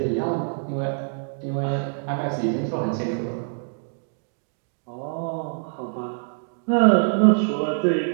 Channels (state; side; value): silent; left; digital silence